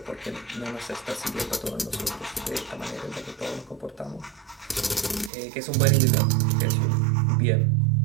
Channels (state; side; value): drops out; left; at 5.3 s